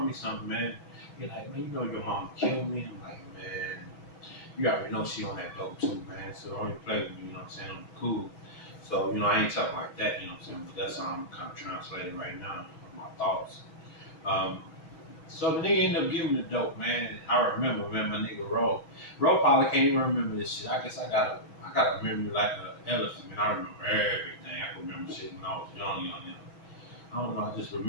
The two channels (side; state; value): right; late; 6.2 ms